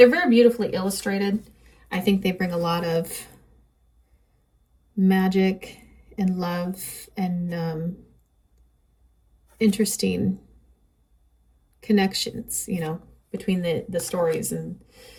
very beautifully illustrated. I think they bring a lot of magic and love and interesting connections, you know, between the stories and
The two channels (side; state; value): both; identical; correlation 1.00